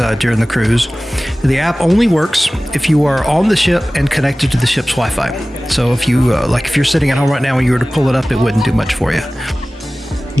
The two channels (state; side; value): normal; both; correlation 0.97